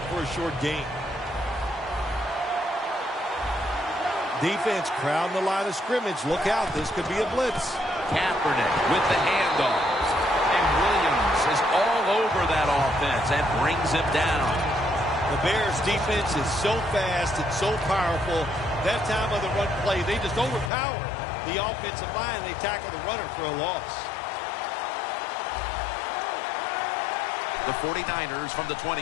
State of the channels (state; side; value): drops out; right; at 20.7 s